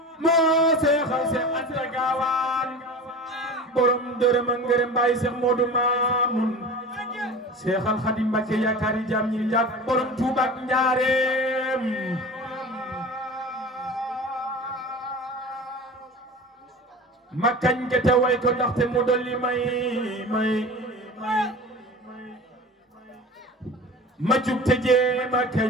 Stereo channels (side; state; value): both; normal; correlation 0.34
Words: moo seexal Seex Anta Gaawaan borom dërëm ak ngërëm Baay Seex Moodu Maamun seexal Xaadim Mbàkke yaakaari jaam ñi njàkk borom Tuuba ak Njaareem ma kañ ke te way ko ndaxte mu dolli may ma jug te jee ma